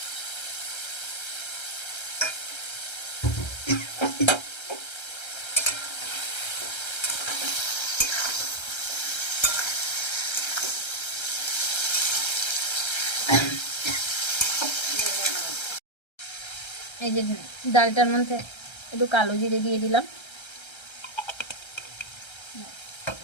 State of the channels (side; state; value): right; late; 1.3 ms